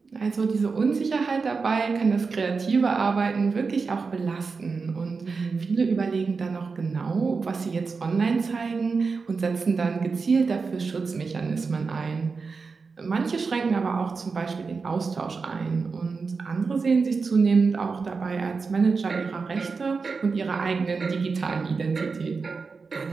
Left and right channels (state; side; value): quieter; left; 4.7 dB